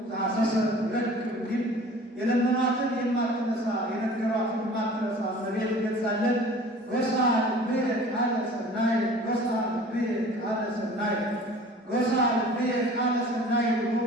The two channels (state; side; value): normal; both; correlation 0.45